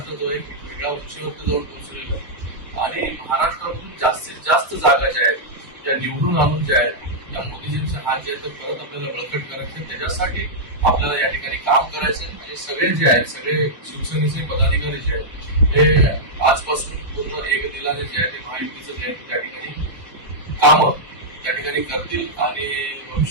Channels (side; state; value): left; late; 1.1 ms